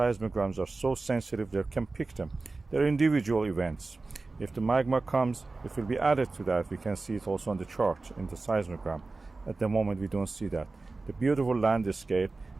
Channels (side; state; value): left; quieter; 3.6 dB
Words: are so sensitive they can pick them. They're individual events. If the magma comes, it will be added to that. We can see it also on the chart in the seismogram. At the moment we don't see that. The beautiful landscape